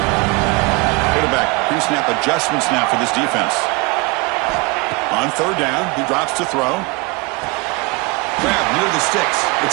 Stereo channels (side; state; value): left; quieter; 26.9 dB